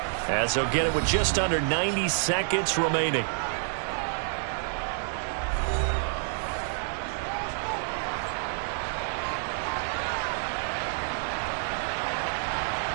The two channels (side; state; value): left; silent; digital silence